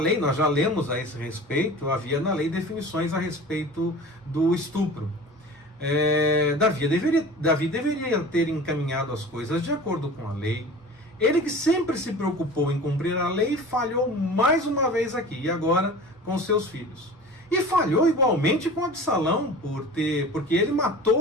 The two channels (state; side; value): normal; both; correlation 0.39